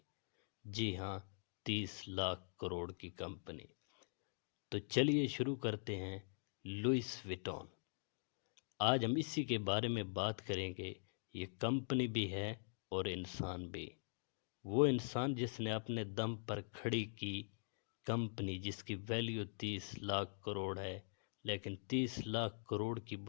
جی ہاں، 30 لاکھ کروڑ کی کمپنی۔ تو چلیے شروع کرتے ہیں۔ لوئس وٹون۔ آج ہم اسی کے بارے میں بات کریں گے۔ یہ کمپنی بھی ہے اور انسان بھی۔ وہ انسان جس نے اپنے دم پر کھڑی کی کمپنی، جس کی ویلیو 30 لاکھ کروڑ ہے، لیکن 30 لاکھ کروڑ کی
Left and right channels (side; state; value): right; silent; digital silence